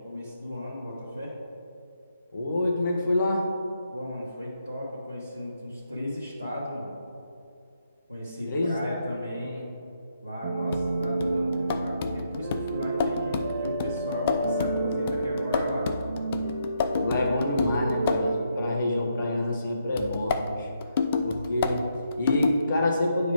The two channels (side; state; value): both; inverted; correlation -0.78